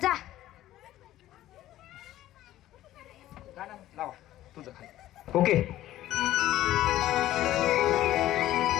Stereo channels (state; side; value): quieter; right; 14.1 dB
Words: जा. गाणं लावा तुझं खाली. ओके.